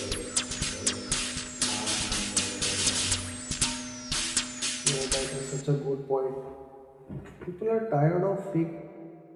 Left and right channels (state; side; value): identical; both; correlation 1.00